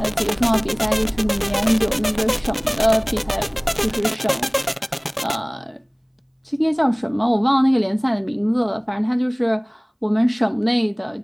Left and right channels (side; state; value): both; identical; correlation 1.00